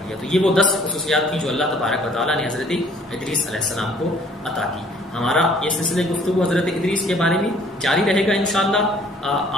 لیا۔ تو یہ وہ 10 خصوصیات تھیں جو اللہ تبارک و تعالیٰ نے حضرت ادریس علیہ السلام کو عطا کی۔ ہمارا یہ سلسلہ گفتگو حضرت ادریس کے بارے میں جاری رہے گا انشاءاللہ،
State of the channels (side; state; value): both; normal; correlation 0.57